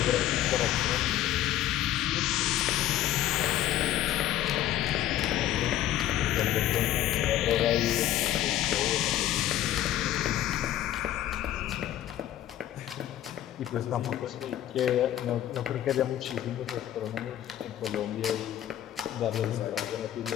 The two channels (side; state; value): right; quieter; 12.4 dB